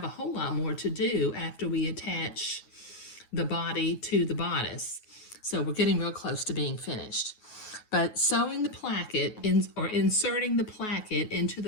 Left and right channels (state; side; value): late; right; 9.4 ms